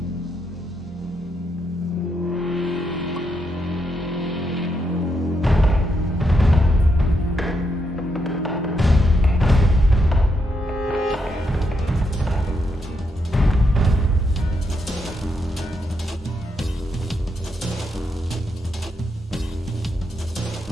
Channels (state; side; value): normal; both; correlation 0.80